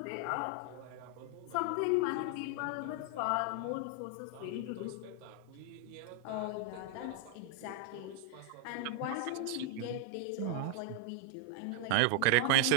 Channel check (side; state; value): both; different; correlation 0.00